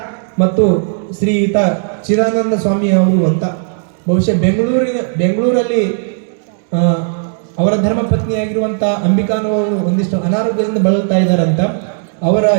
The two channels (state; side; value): silent; left; digital silence